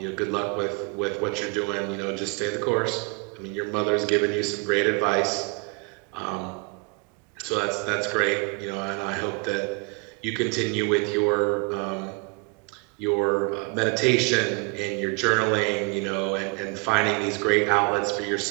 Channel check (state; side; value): quieter; left; 32.9 dB